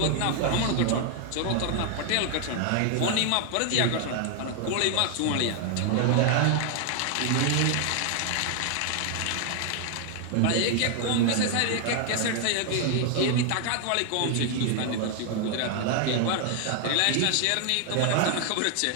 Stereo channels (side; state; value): both; different; correlation 0.00